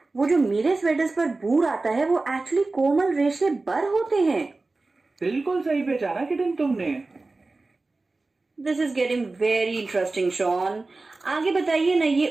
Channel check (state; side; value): quieter; left; 3.4 dB